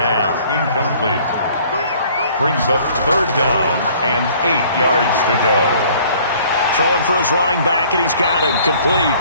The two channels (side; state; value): both; inverted; correlation -0.55